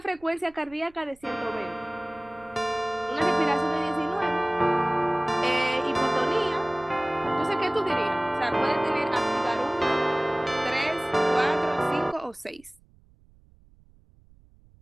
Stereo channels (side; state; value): right; noise; rumble, 28 dB below the sound